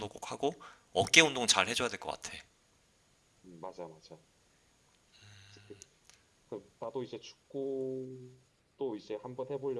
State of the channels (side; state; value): both; identical; correlation 1.00